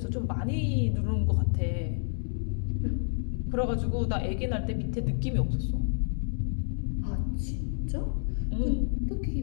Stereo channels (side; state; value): right; silent; digital silence